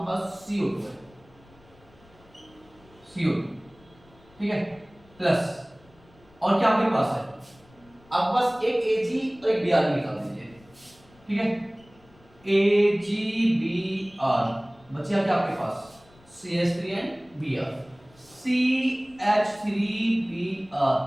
पास CO2 है, CO2, ठीक है, प्लस, और क्या आपके पास है, आपके पास एक Ag और एक Br निकाल दीजिए, ठीक है। AgBr बचा क्या आपके पास, CH3 एंड Br, CH3Br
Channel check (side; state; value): left; noise; rumble, 28 dB below the sound